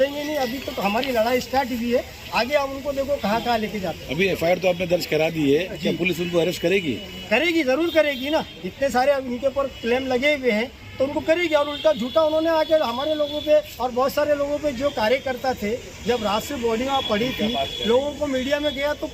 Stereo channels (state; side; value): identical; both; correlation 1.00